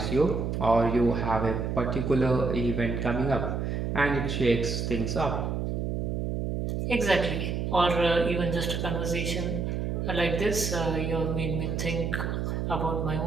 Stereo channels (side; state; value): right; noise; hum, 1 dB below the sound